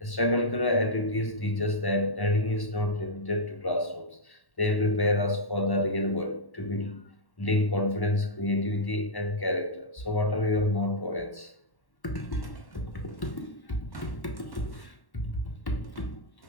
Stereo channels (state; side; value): late; right; 1.1 ms